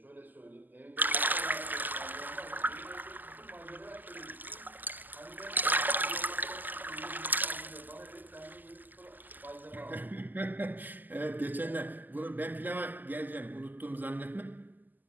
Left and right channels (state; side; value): late; left; 0.086 ms